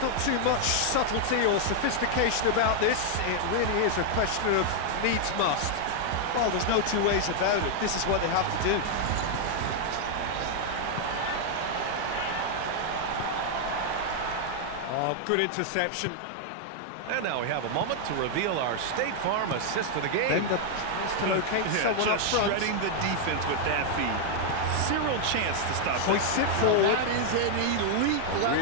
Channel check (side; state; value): both; different; correlation 0.00